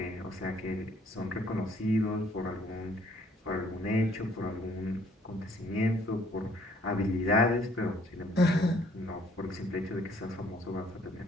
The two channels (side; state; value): both; normal; correlation 0.62